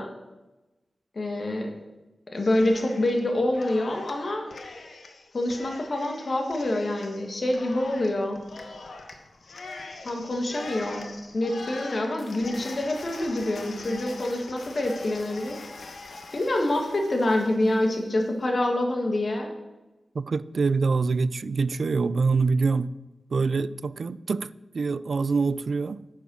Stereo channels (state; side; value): normal; both; correlation 0.92